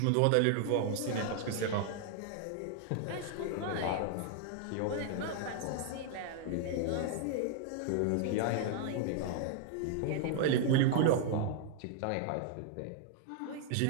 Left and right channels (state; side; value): different; both; correlation 0.00